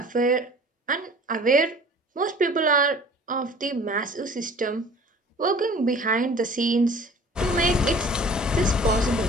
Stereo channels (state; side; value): normal; both; correlation 0.47